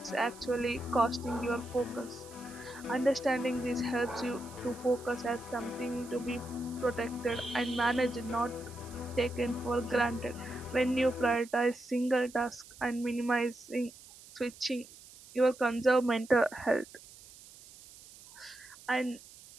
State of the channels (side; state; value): right; noise; hiss, 20 dB below the sound